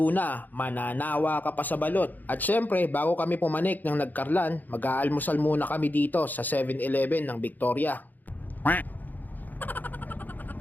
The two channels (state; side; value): late; right; 0.084 ms